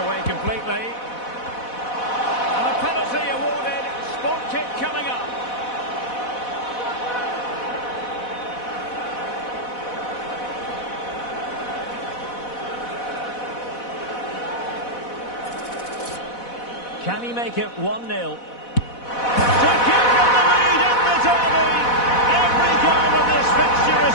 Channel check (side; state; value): right; late; 4.1 ms